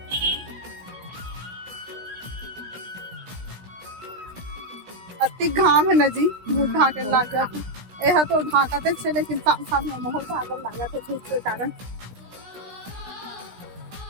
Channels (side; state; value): left; late; 16 ms